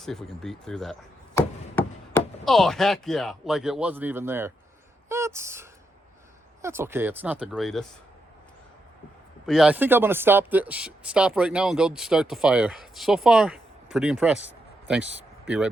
if we can beat through that. Oh, heck yeah. Like it wasn't even there. That's okay. It's not the greatest. But yeah, I think I'm going to stop right now and go start the fire. So far, pretty impressed. Thanks. Be right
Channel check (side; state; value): both; normal; correlation 0.82